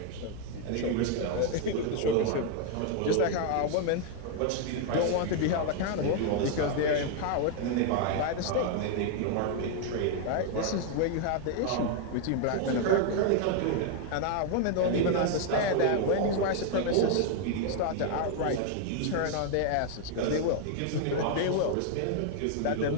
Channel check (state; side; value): different; both; correlation 0.00